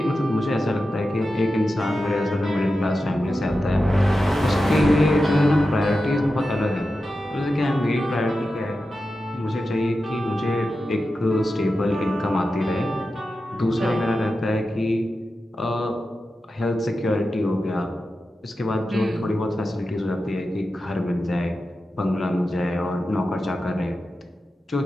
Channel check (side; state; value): both; normal; correlation 0.91